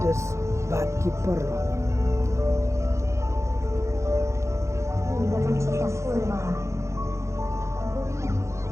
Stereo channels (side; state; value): left; late; 0.14 ms